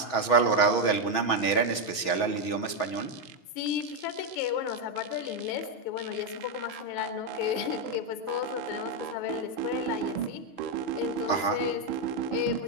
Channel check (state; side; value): late; right; 6.3 ms